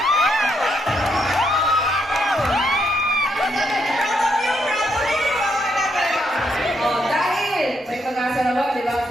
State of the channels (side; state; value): both; normal; correlation 0.76